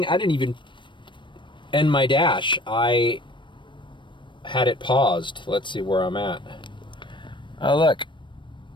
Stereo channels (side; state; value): right; late; 0.23 ms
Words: I didn't even end my dash. I had it paused. Let's see where I'm at. Oh, look.